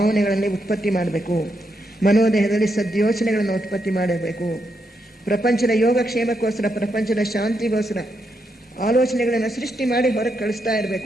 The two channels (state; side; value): normal; both; correlation 0.81